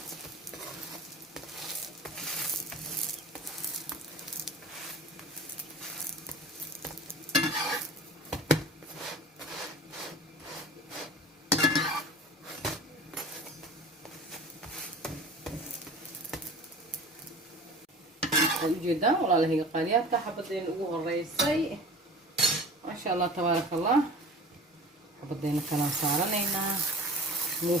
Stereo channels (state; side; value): normal; both; correlation 0.40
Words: جدا والله هي قاليات حبتين ugu horeysay ما شاء الله تبارك الله حبتين كلام سارنينا